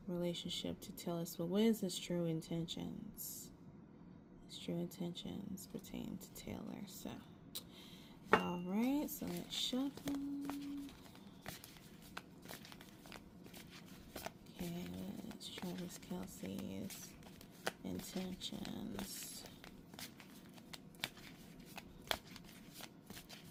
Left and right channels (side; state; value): both; identical; correlation 1.00